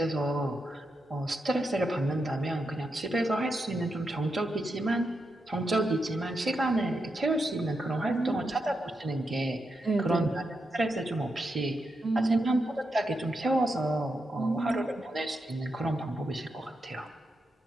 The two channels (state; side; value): normal; both; correlation 0.85